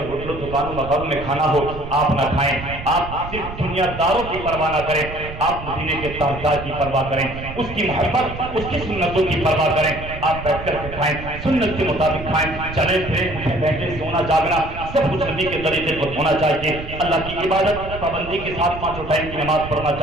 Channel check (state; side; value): noise; right; rumble, 11 dB below the sound